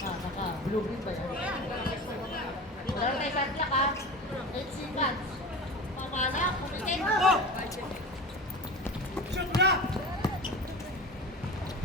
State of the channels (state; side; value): normal; both; correlation 0.32